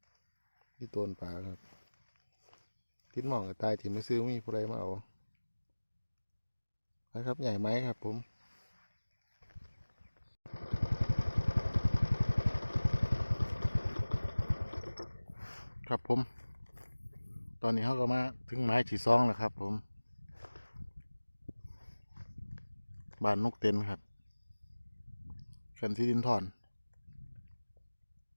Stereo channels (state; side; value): inverted; both; correlation -1.00